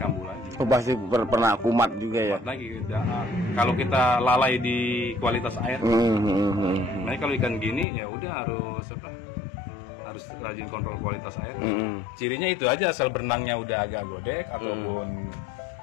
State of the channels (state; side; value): drops out; right; at 7.9 s